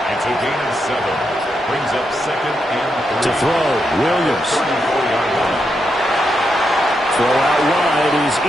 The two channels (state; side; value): normal; both; correlation 0.83